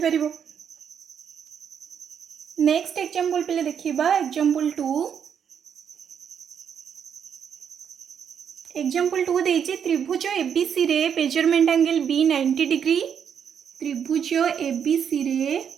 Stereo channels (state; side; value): quieter; left; 7.9 dB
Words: नेक्स्ट एग्जांपल पिले देखिबा एग्जांपल 2। एग्जांपल 2 देछि त्रिभुज एबीसी रे मेजरमेंट एंगल बी 90 डिग्री, त्रिभुज एबीसी रे